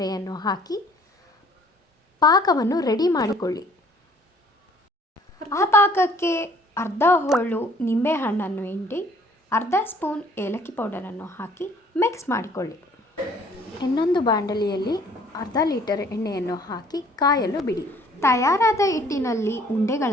ಹಾಕಿ ಪಾಕವನ್ನು ರೆಡಿ ಮಾಡಿಕೊಳ್ಳಿ. ಆ ಪಾಕಕ್ಕೆ ಅರ್ಧ ಹೋಳು ನಿಂಬೆಹಣ್ಣನ್ನು ಹಿಂಡಿ ಅರ್ಧ ಸ್ಪೂನ್ ಏಲಕ್ಕಿ ಪೌಡರನ್ನು ಹಾಕಿ ಮಿಕ್ಸ್ ಮಾಡಿಕೊಳ್ಳಿ. ಇನ್ನೊಂದು ಬಾಂಡಲಿಯಲ್ಲಿ ಅರ್ಧ ಲೀಟರ್ ಎಣ್ಣೆಯನ್ನು ಹಾಕಿ ಕಾಯಲು ಬಿಡಿ. ತಯಾರಾದ ಹಿಟ್ಟಿನಲ್ಲಿ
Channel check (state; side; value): normal; both; correlation 0.57